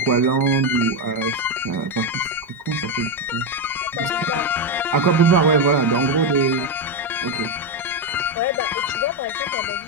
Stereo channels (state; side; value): normal; both; correlation 0.08